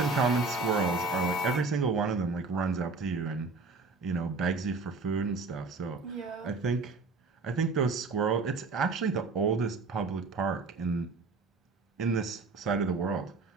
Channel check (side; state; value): left; quieter; 3.9 dB